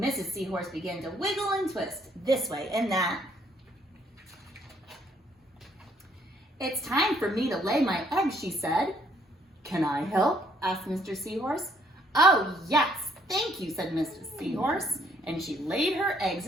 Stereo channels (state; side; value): normal; both; correlation 0.67